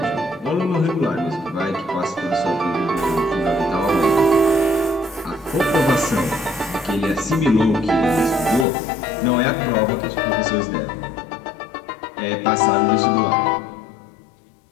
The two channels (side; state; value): right; drops out; at 8.7 s